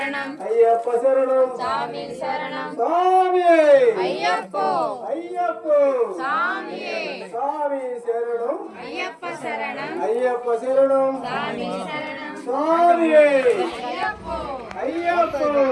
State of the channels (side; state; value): both; identical; correlation 1.00